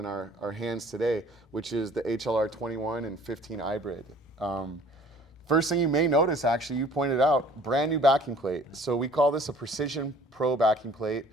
our hands today, which is the HLR21 and 15 iBrid. First thing you may notice, actually, you pointed out, brand new backing plate. So we call this a Precision Pro backing plate.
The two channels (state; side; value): normal; both; correlation 0.52